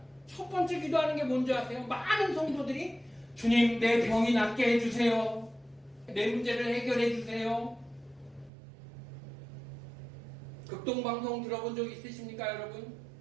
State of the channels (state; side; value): drops out; left; at 8.5 s